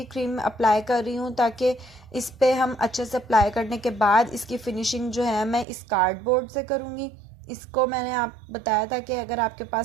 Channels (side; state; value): left; drops out; at 5.7 s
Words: क्रीम अप्लाई कर रही हूँ ताकि इस पर हम अच्छे से अप्लाई करने के बाद इसकी फिनिशिंग जो है मैं इस कार्डबोर्ड से करूँगी। इसको मैंने आप बताया था कि अगर आपके